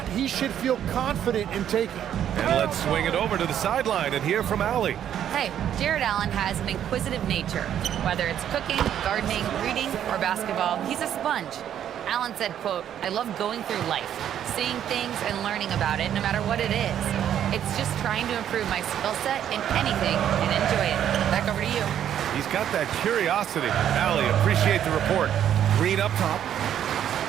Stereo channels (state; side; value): quieter; left; 10.1 dB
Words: he should feel confident in taking. And let's swing it over to the sideline and hear from Allie. Hey, Jared Allen has an inquisitive nature. Whether it's cooking, gardening, reading, or basketball, he's a sponge. Allen said, quote, "I love going through life, seeing things and learning about it no matter what it is. It's just trying to improve my skill set in anything and enjoy it." Back over to you. He's got that curiosity. Allie, appreciate the report. Green up top.